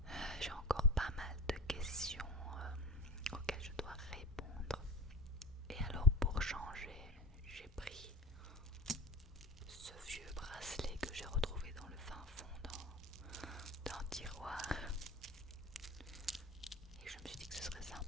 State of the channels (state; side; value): normal; both; correlation 0.32